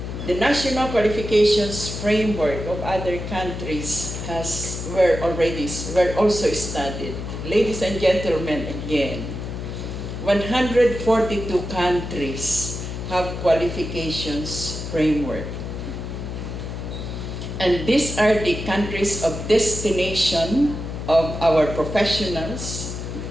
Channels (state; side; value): noise; left; hum, 7 dB below the sound